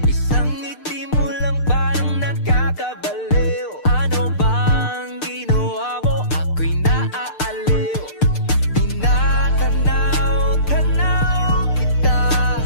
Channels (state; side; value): late; right; 6.7 ms